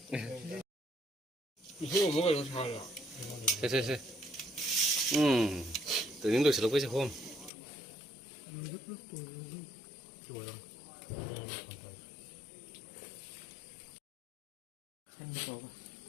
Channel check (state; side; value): drops out; right; at 7.5 s